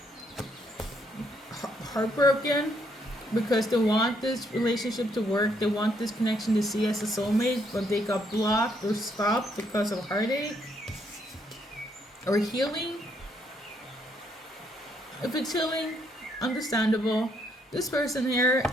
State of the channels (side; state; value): both; normal; correlation 0.72